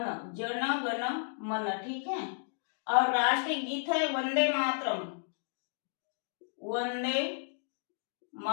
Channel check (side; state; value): right; silent; digital silence